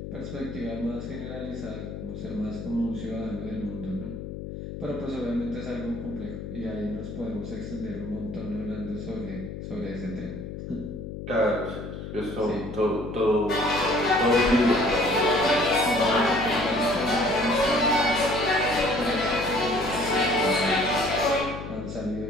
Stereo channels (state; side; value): noise; left; hum, 8 dB below the sound